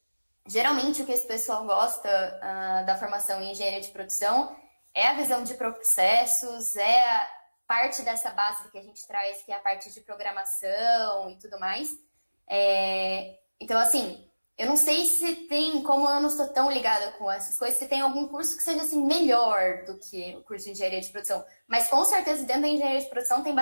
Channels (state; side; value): inverted; both; correlation -1.00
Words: Geralmente, o que esse pessoal gosta da formação em engenharia de produção é a visão de processos, é a parte dessa base que a gente traz, que é a parte de programação e tudo mais. Então, assim, eu não sei se tem, como eu não estou tão ligada com essas coisas, se tem algum curso que seja, assim, melhor do que o curso de engenharia de produção. Mas, com certeza, dentro da engenharia de produção tem